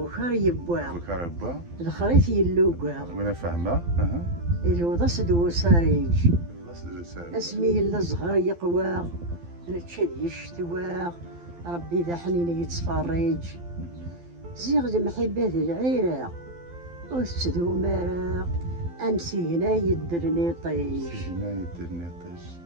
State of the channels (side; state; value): left; late; 12 ms